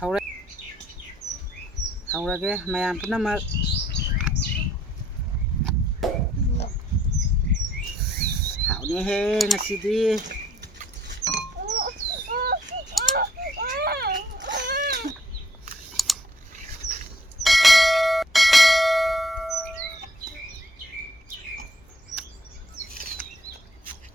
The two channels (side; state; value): both; normal; correlation 0.63